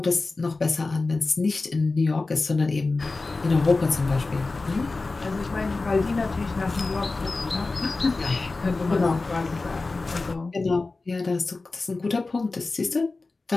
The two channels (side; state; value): right; quieter; 3.6 dB